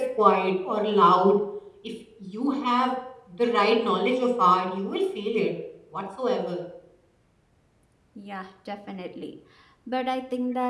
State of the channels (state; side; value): identical; both; correlation 1.00